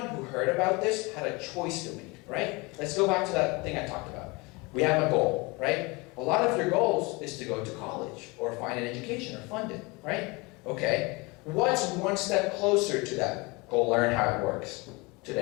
who heard about this had a choice to make, right? Let's go back to that thing I talked about. We have a goal, right? A lot of your goals is to go to college or find an education or fund it, right? Okay. What's one step closer to that? Go learn how it works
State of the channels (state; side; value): quieter; right; 26.0 dB